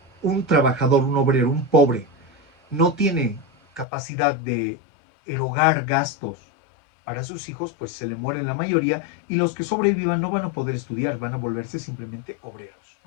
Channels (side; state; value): right; drops out; at 3.9 s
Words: un trabajador, un obrero, un pobre, no tiene capacidad de erogar gastos para sus hijos, pues se le mueren la mayoría, y los que sobrevivan no van a poder estudiar, van a volverse simplemente obreros,